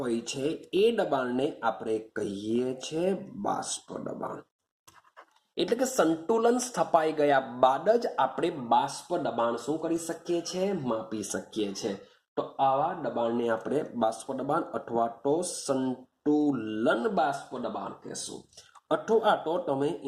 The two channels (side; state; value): both; identical; correlation 1.00